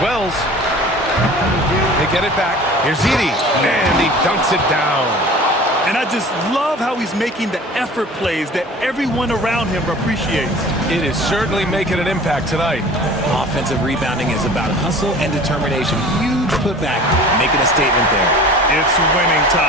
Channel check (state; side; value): normal; both; correlation 0.43